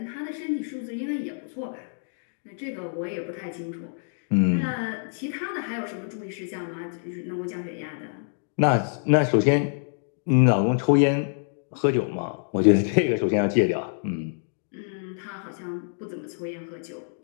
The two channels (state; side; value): silent; right; digital silence